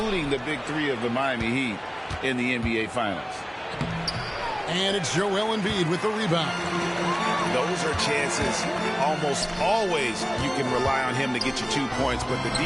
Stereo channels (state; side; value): identical; both; correlation 1.00